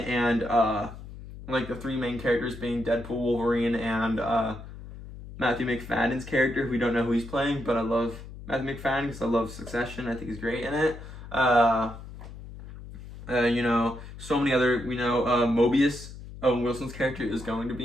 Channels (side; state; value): left; noise; hum, 13 dB below the sound